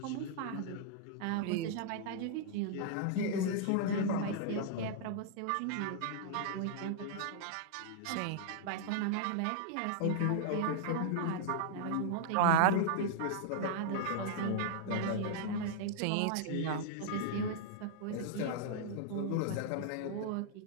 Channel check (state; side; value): different; both; correlation -0.01